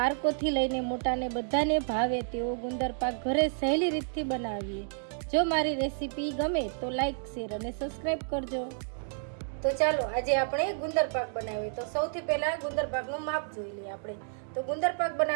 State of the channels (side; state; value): left; silent; digital silence